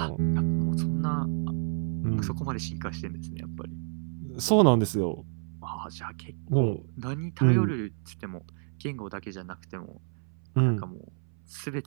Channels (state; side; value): silent; left; 58 dB below the other